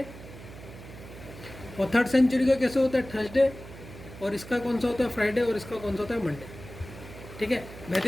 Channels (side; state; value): right; noise; hum, 15 dB below the sound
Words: और थर्ड सेंचुरी का कैसे होता है, थर्सडे। और इसका कौन सा होता है, फ्राइडे। और इसका कौन सा होता है, मंडे। ठीक है,